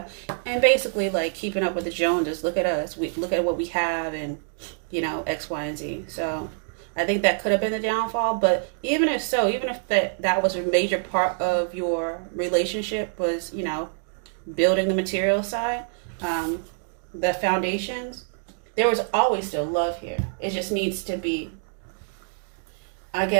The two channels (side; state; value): left; silent; digital silence